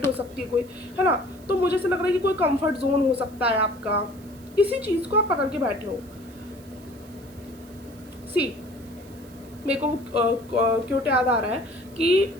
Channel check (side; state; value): right; noise; hiss, 25 dB below the sound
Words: हो सकती है कोई, है ना। तो मुझे ऐसा लग रहा है कि कोई कंफर्ट जोन हो सकता है आपका, किसी चीज़ को आप पकड़ के बैठे हो। सी मेरे को क्यों याद आ रहा है कि